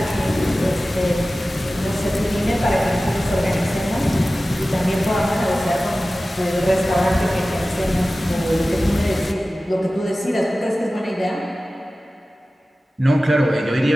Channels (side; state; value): both; normal; correlation 0.96